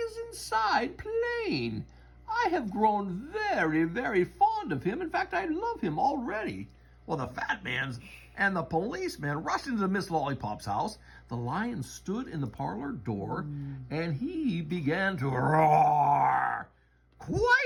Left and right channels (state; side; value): identical; both; correlation 1.00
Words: inside playing. I have grown very, very fond of him. In fact, I love him already." Well, the fat man and the policeman rushed into Miss Lollipop's house. The lion stood in the parlor door, and he began to roar.